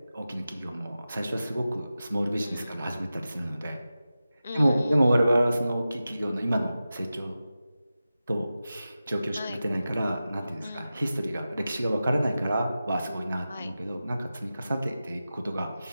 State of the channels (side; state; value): both; inverted; correlation -0.93